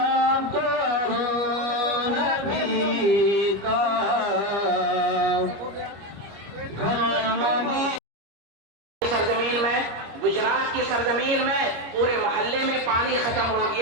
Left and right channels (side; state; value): left; late; 25 ms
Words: سرزمین میں، گجرات کی سرزمین میں پورے محلے میں پانی ختم ہو